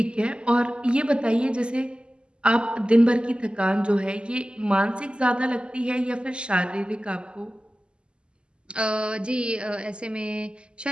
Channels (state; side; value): late; left; 0.050 ms